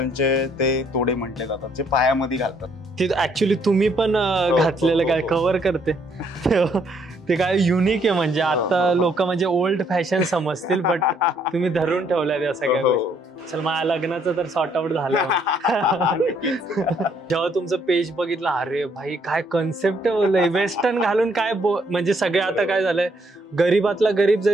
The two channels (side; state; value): both; normal; correlation 0.68